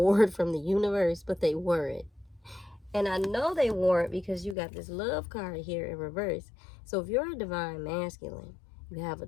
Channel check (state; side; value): drops out; right; at 4.5 s